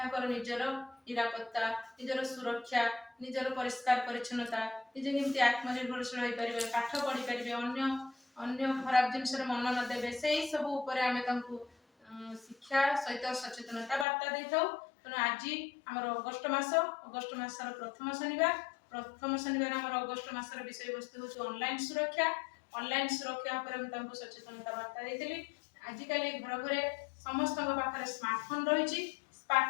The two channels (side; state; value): right; drops out; at 14.1 s